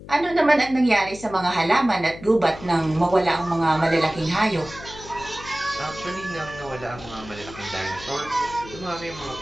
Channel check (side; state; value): left; noise; hum, 16 dB below the sound